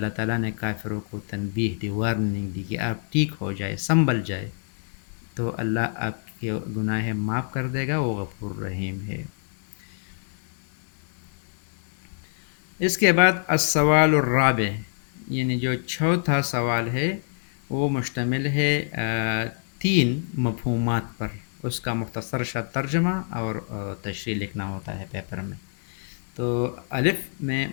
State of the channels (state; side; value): silent; right; digital silence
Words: تعالیٰ نے کافروں کو تنبیہ دی، وارننگ دی کہ آپ ٹھیک ہو جائے، سنبھل جائے، تو اللہ آپ کے گناہ معاف کر دے گا، وہ غفور رحیم ہے. اس کے بعد السوال الرابع، یعنی جو چوتھا سوال ہے وہ مشتمل ہے 3 مفہومات پر. اس کا مختصر سا ترجمہ اور تشریح لکھنا ہوتا ہے پیپر میں. تو الف میں